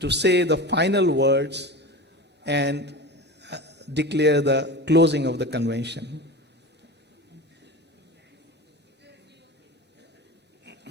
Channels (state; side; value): normal; both; correlation 0.29